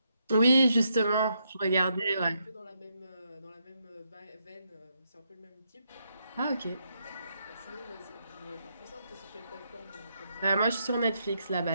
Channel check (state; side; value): inverted; both; correlation -0.79